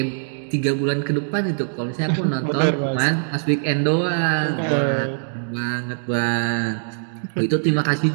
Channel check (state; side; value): silent; left; digital silence